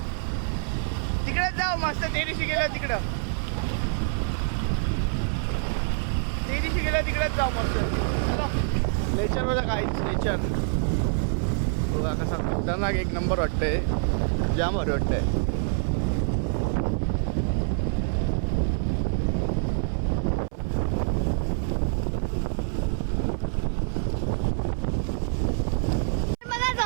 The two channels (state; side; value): silent; left; 61 dB below the other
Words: तिकडेच जाऊ मस्त. ते दिवशी गेलं तिकडं, तिकडेच जाऊ मस्त. चला नेचर बघा, काहीच नेचर बघा कसा खतरनाक 1 नंबर वाटतंय, जाम भारी वाटतंय.